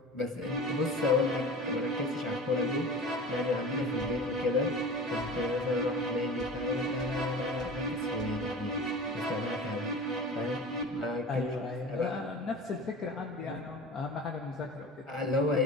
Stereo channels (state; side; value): normal; both; correlation 0.36